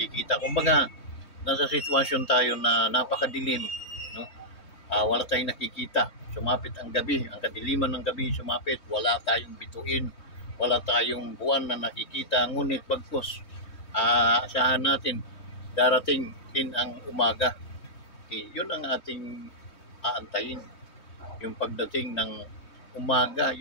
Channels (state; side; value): late; right; 3.2 ms